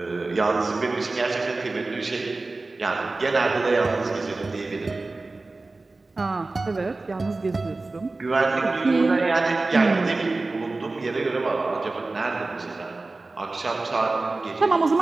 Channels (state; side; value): quieter; left; 3.4 dB